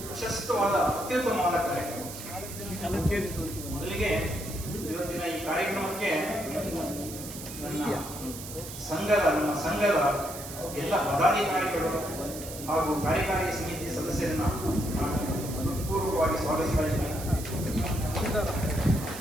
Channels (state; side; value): noise; right; hiss, 11 dB below the sound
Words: ಪ್ರಶಸ್ತವಾದ ಅತ್ಯುತ್ತಮವಾದ ಕಾರ್ಯಕ್ರಮ. ಮೊದಲಿಗೆ ಇವತ್ತಿನ ಈ ಕಾರ್ಯಕ್ರಮಕ್ಕೆ ನಮ್ಮ ಸಂಘದ ಎಲ್ಲ ಪದಾಧಿಕಾರಿಗಳು ಹಾಗೂ ಕಾರ್ಯಕಾರಿ ಸಮಿತಿ ಸದಸ್ಯರನ್ನ ಪೂರ್ವಕವಾಗಿ ಸ್ವಾಗತಿಸ್ತಾ ಇದ್ದೀನಿ.